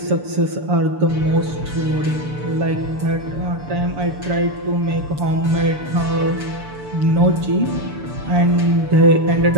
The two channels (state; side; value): late; left; 6.9 ms